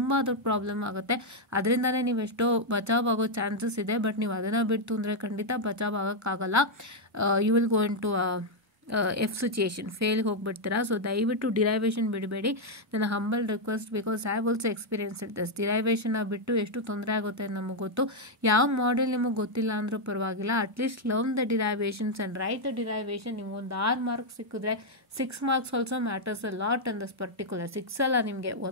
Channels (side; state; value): both; normal; correlation 0.00